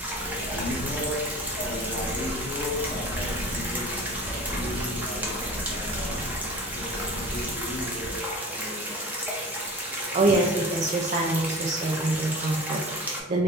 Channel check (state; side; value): normal; both; correlation 0.38